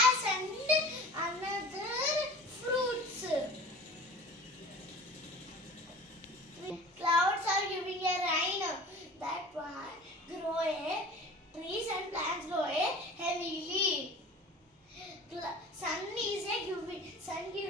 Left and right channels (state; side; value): normal; both; correlation 0.41